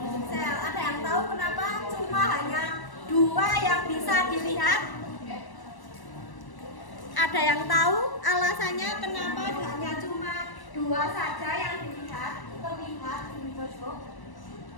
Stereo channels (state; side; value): late; right; 1.1 ms